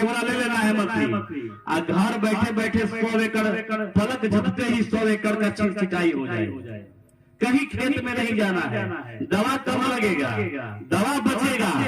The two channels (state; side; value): identical; both; correlation 1.00